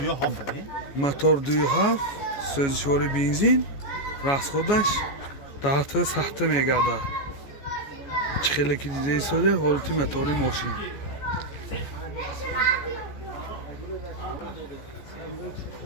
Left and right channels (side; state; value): right; late; 14 ms